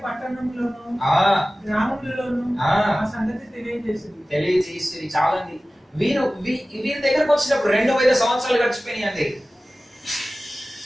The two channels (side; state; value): both; normal; correlation 0.97